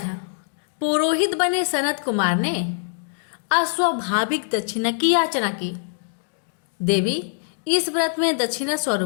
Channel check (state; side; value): silent; right; digital silence